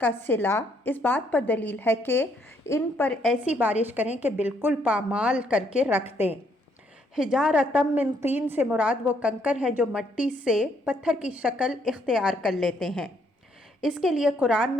کا صلہ اس بات پر دلیل ہے کہ ان پر ایسی بارش کریں کہ بالکل پامال کر کے رکھ دیں۔ حجارۃ من طین سے مراد وہ کنکر ہیں جو مٹی سے پتھر کی شکل اختیار کر لیتے ہیں۔ اس کے لیے قرآن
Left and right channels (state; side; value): normal; both; correlation 0.70